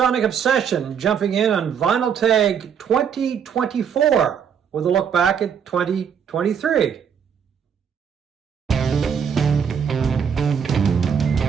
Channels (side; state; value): left; quieter; 7.5 dB